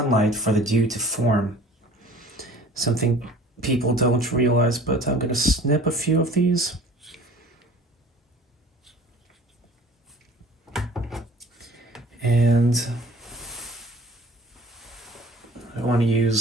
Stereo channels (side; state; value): both; normal; correlation 0.47